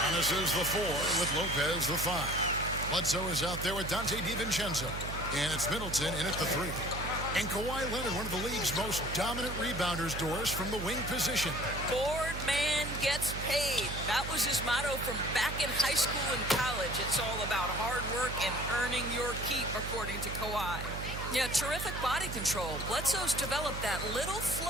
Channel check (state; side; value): noise; right; hum, 6 dB below the sound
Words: Giannis is the 4 with Lopez the 5. Bledsoe is out there with Dante DiVincenzo. And it's Middleton in at the 3. And Kawhi Leonard, one of the league's most dominant rebounders, Doris, from the wing position. Board man gets paid. That was his motto from back in high school and college. It's all about hard work and earning your keep, according to Kawhi. Yeah, terrific body control. Bledsoe's developed that little